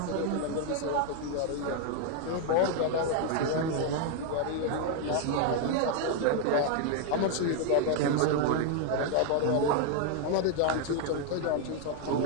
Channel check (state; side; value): different; both; correlation 0.00